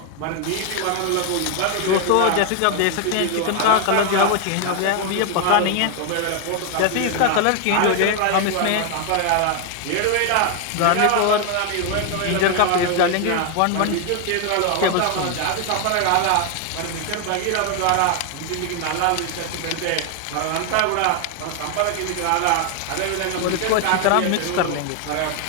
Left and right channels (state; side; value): different; both; correlation 0.01